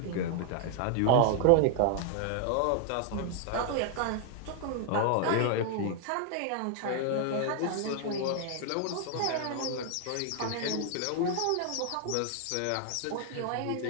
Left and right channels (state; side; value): different; both; correlation 0.00